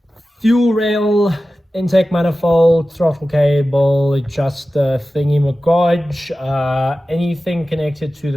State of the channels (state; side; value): normal; both; correlation 0.95